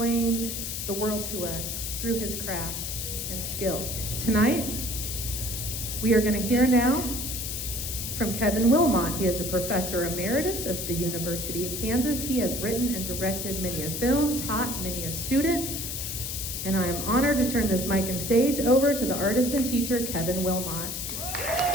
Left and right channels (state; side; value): noise; left; hiss, 4 dB below the sound